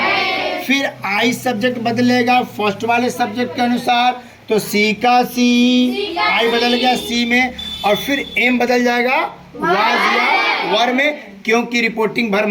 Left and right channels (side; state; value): both; identical; correlation 1.00